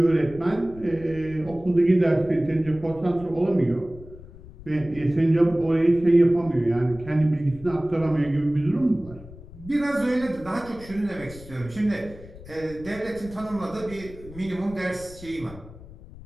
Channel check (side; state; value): left; noise; rumble, 18 dB below the sound